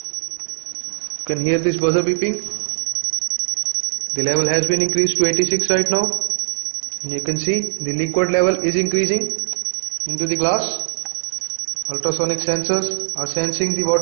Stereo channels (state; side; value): silent; left; 60 dB below the other